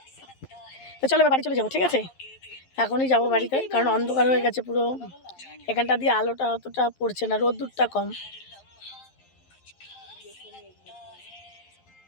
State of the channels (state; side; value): late; right; 11 ms